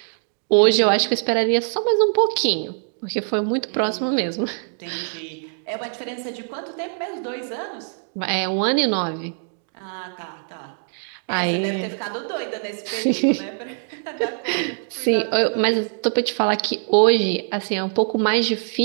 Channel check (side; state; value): left; silent; digital silence